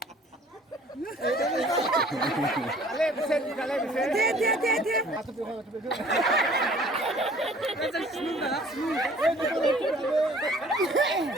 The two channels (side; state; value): both; normal; correlation 0.53